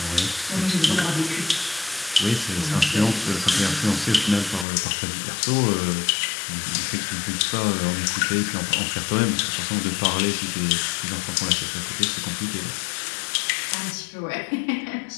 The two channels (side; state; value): right; drops out; at 4.7 s